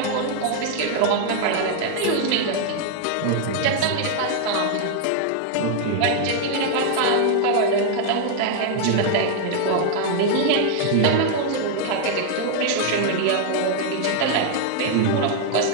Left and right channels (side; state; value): both; different; correlation 0.00